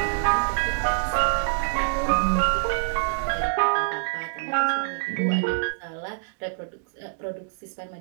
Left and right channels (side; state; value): left; silent; digital silence